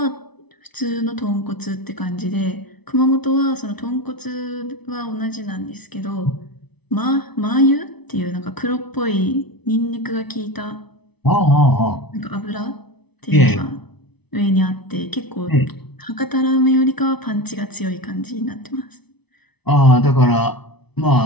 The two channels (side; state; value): right; late; 0.99 ms